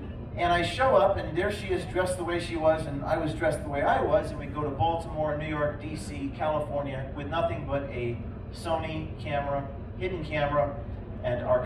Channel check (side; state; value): both; identical; correlation 1.00